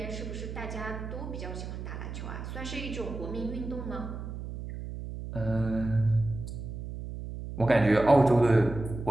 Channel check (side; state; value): right; noise; hum, 8 dB below the sound